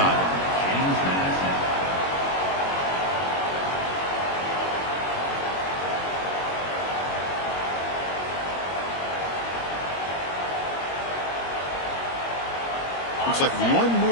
Looks like one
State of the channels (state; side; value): late; right; 21 ms